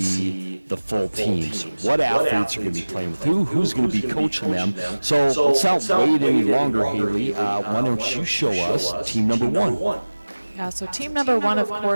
the full teams. What athletes are going to be playing with who's going to be coaching them. So let's not wait any longer, Haley. Why don't you show us team number 1? Yeah, so team number 1, of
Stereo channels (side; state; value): both; inverted; correlation -1.00